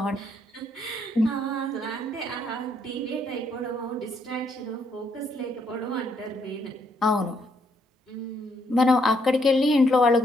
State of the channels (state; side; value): normal; both; correlation 0.72